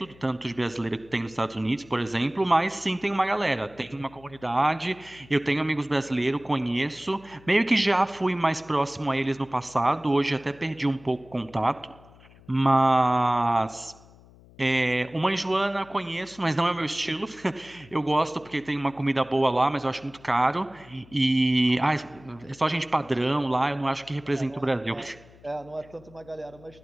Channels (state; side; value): noise; left; hum, 24 dB below the sound